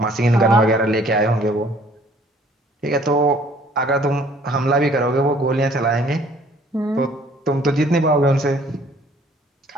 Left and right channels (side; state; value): both; normal; correlation 0.57